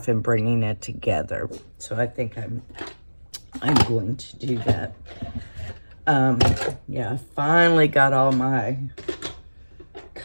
and bringing it together. So I think I'm going to do that. Yeah, I finally got all my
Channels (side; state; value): both; inverted; correlation -1.00